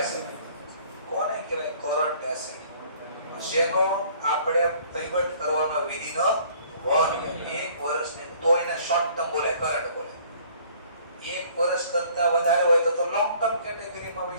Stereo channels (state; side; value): inverted; both; correlation -0.56